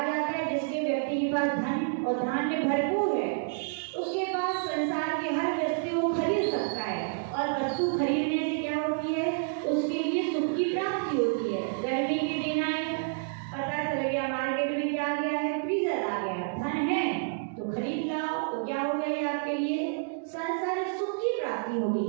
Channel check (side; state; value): left; silent; digital silence